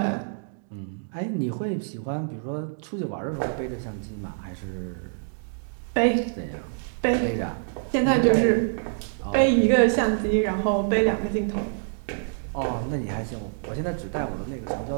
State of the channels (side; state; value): left; silent; digital silence